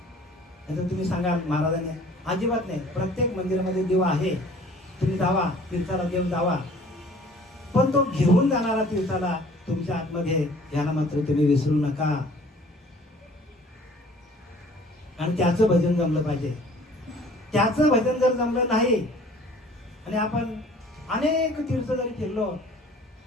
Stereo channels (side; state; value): both; normal; correlation 0.51